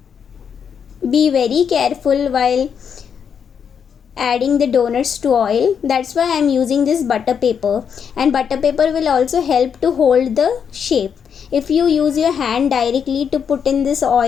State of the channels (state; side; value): quieter; right; 7.3 dB